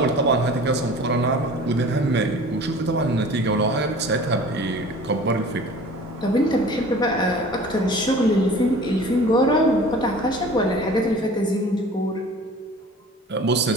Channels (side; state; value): both; normal; correlation 0.43